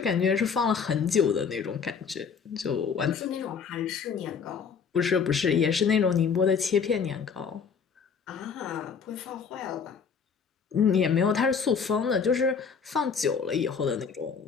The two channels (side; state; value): right; quieter; 6.1 dB